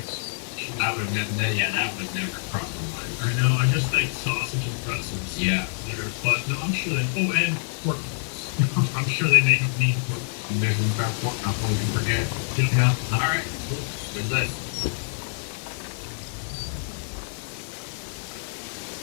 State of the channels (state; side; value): silent; right; digital silence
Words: That would never cross my mind. I know, I just think sausage and pretzels. Yeah. There, but no, I'm sure they. Oh, and pork roast. I'm sure they make mean pork. There's one about pork, not one you forget. Yeah. All right. Cool. Good list.